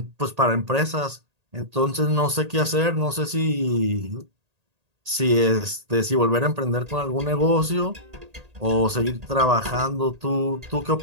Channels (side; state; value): left; late; 1.8 ms